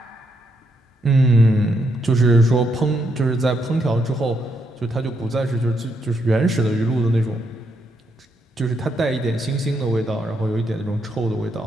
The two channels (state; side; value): normal; both; correlation 0.78